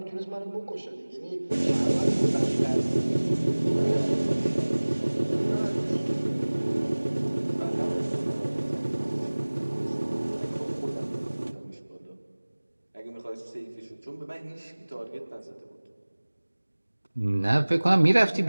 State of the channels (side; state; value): both; inverted; correlation -1.00